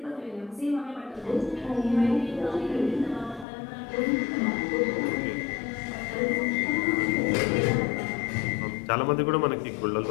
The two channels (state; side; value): drops out; right; at 3.5 s